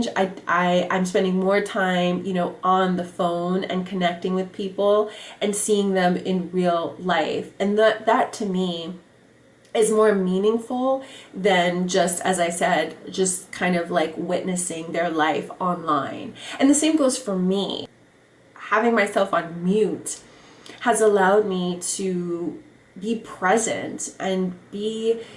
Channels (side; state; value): both; identical; correlation 1.00